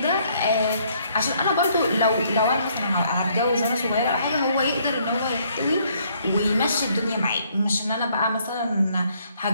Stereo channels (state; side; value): inverted; both; correlation -0.67